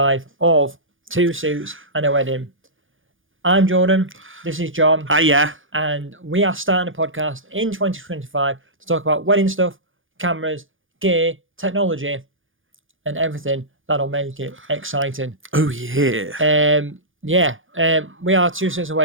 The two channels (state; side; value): late; left; 0.58 ms